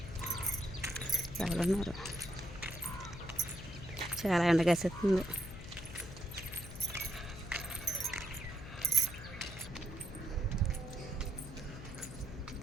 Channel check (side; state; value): left; noise; hum, 12 dB below the sound